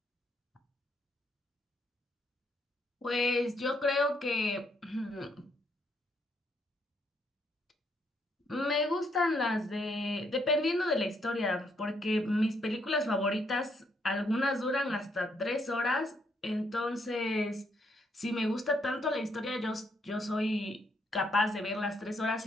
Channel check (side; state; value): both; normal; correlation 0.73